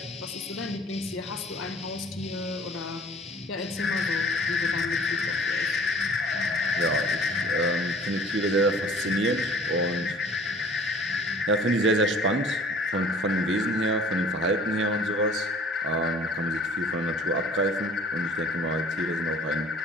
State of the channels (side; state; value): both; normal; correlation 0.49